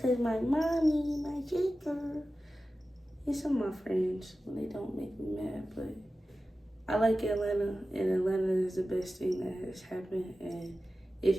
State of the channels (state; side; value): normal; both; correlation 0.94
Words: my mommy, my sister, and some of my friends, when they don't make me mad. But I like Atlanta, and Atlanta is the best thing that has happened. And